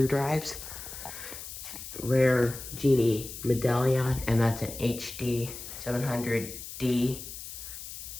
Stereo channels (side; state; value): left; noise; hiss, 11 dB below the sound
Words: Rare Genie Medallion, and that's an HD 700D.